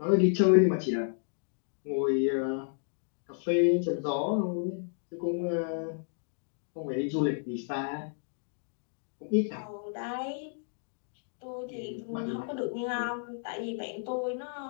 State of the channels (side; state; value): right; silent; digital silence